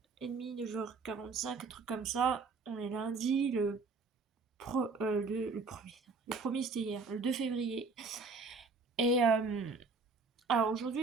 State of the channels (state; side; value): quieter; left; 4.3 dB